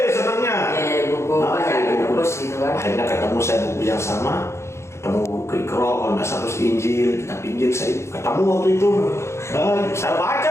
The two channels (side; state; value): right; late; 0.13 ms